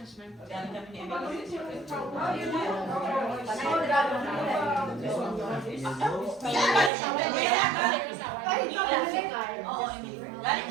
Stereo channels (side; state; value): left; drops out; at 6.9 s